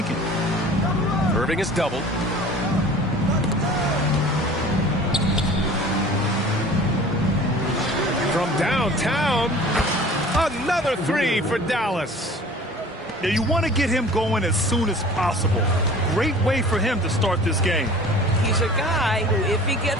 Irving is doubled. From downtown, another three for Dallas. Yeah, you want to get him going as soon as possible. Great way for him to start this game. He's a guy who, if he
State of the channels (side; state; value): both; normal; correlation 0.44